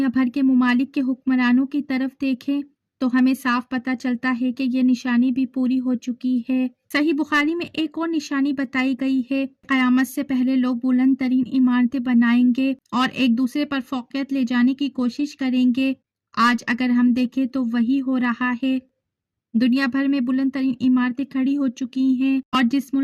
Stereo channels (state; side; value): identical; both; correlation 1.00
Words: بھر کے ممالک کے حکمرانوں کی طرف دیکھیں تو ہمیں صاف پتہ چلتا ہے کہ یہ نشانی بھی پوری ہو چکی ہے۔ صحیح بخاری میں ایک اور نشانی بتائی گئی ہے، قیامت سے پہلے لوگ بلند ترین عمارتیں بنائیں گے اور ایک دوسرے پر فوقیت لے جانے کی کوشش کریں گے۔ آج اگر ہم دیکھیں تو وہی ہو رہا ہے، دنیا بھر میں بلند ترین عمارتیں کھڑی ہو چکی ہیں، اور جس